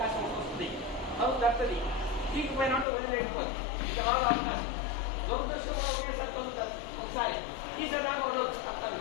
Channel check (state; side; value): drops out; right; at 2.9 s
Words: వస్తుంది, తలుపు తప్పుతుంది, తీగిపోయినట్టు వదిలేకపోతుంది, ఇక రాదు అవకాశం. దురదృష్టం కూడా ఒకేసారి తలుపు తప్పుతుంది, ఒకసారి తీసేదాకా వదలదు, తప్పదు.